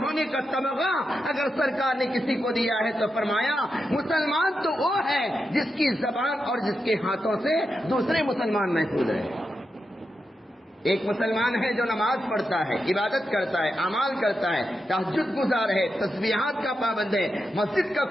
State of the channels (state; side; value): normal; both; correlation 0.87